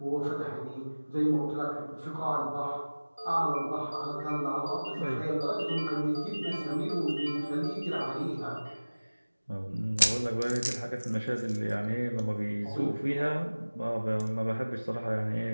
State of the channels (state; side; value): inverted; both; correlation -1.00